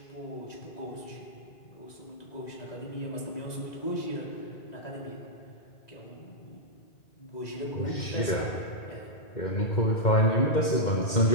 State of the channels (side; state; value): right; late; 2.1 ms